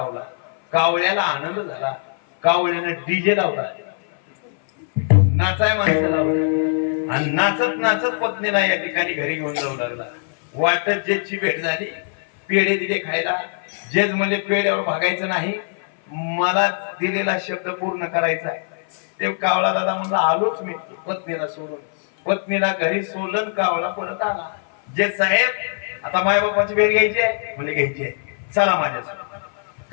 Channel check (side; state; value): right; silent; 57 dB below the other